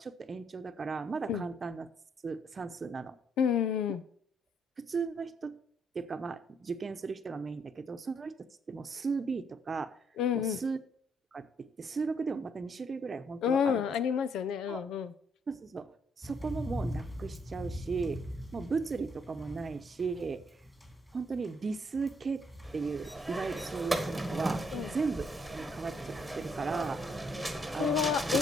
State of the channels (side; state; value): both; normal; correlation 0.71